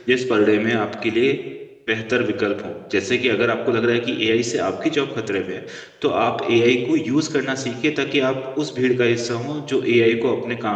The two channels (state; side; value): identical; both; correlation 1.00